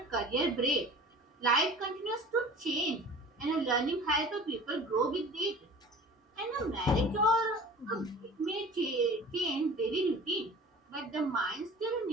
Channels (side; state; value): both; normal; correlation 0.42